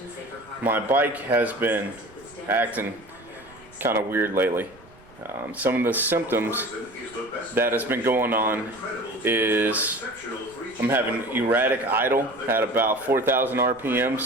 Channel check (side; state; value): right; noise; rumble, 25 dB below the sound